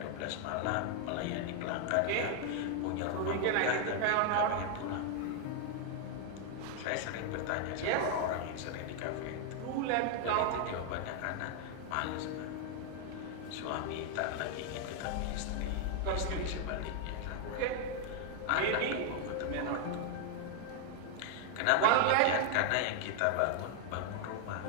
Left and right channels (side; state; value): both; different; correlation 0.00